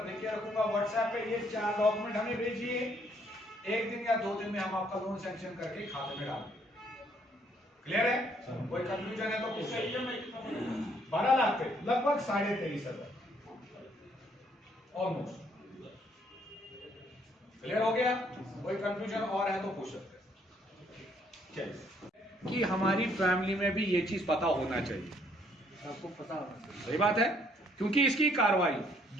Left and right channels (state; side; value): normal; both; correlation 0.67